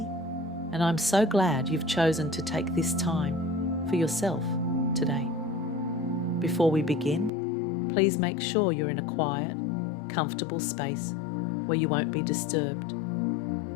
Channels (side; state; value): right; drops out; at 7.3 s